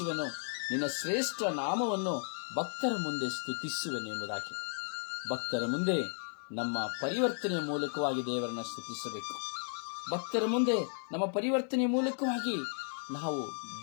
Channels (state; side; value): silent; right; 55 dB below the other